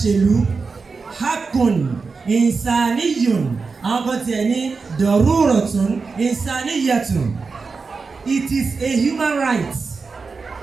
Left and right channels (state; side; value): quieter; left; 4.6 dB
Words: ṣèlú. Hakun insaniyun. Àwọn kan tiẹ̀ ní daruratun insaniyatun. It is a human right.